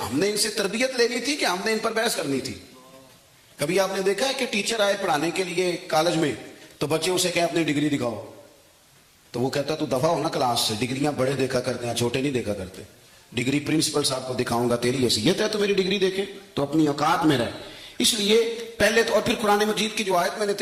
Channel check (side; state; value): both; identical; correlation 1.00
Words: نے ان سے تربیت لینی تھی کہ ہم نے ان پر بحث کرنی تھی. کبھی آپ نے دیکھا ہے کہ ٹیچر آئے پڑھانے کے لیے کالج میں, تو بچے اسے کہیں اپنی ڈگری دکھاؤ, تو وہ کہتا تو دفعہ ہونا کلاس سے, ڈگریاں بڑے دیکھا کرتے ہیں چھوٹے نہیں دیکھا کرتے. ڈگری پرنسپل صاحب کو دکھاؤں گا, تیری حیثیت ہے تو میری ڈگری دیکھے, تو اپنی اوقات میں رہے. اس لیے پہلے تو, اور پھر قرآن مجید کی جو آیت میں نے